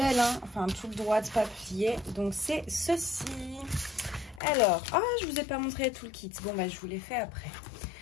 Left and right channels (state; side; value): drops out; right; at 4.4 s